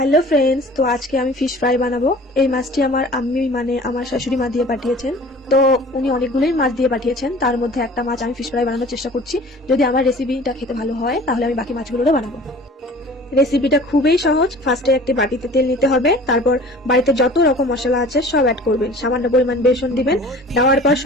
friends, তো আজকে আমি ফিশ ফ্রাই বানাবো। এই মাছটি আমার আম্মি মানে আমার শাশুড়ি মা দিয়ে পাঠিয়েছেন। তো উনি অনেকগুলোই মাছ দিয়ে পাঠিয়েছেন, তার মধ্যে একটা মাছ আমি ফিশ ফ্রাই বানানোর চেষ্টা করছি। যদি আমার রেসিপিটা খেতে ভালো হয় তাহলে আমি বাকি মাছগুলোও বানাবো। রেসিপিটা খুবই সহজ। ফার্স্টে একটি বাটিতে তেল নিতে হবে, তারপর বাড়িতে যত রকম মশলা আছে সব অ্যাড করবেন, সামান্য পরিমাণ বেসন দিবেন। দেওয়ার পর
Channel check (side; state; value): both; normal; correlation 0.45